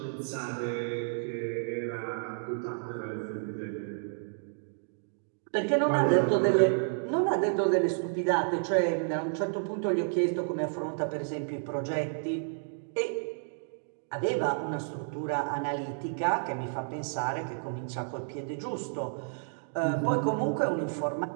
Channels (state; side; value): silent; left; digital silence